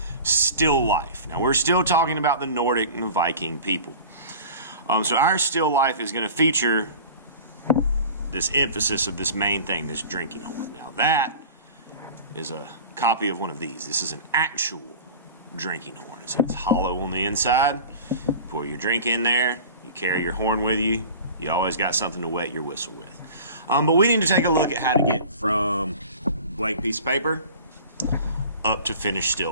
still life. Now, we're still talking about the Nordic and the Viking people. So our still life is going to feature this emphasis of this main thing, this drinking horn. Now, that is a copy of one of these. This is an actual drinking horn. It's hollow on the inside. You pour your drink in there. You carry your horn with you. You always got something to wet your whistle with. But we need to take a look at how to get from blank piece of paper up to finished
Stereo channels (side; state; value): both; inverted; correlation -0.39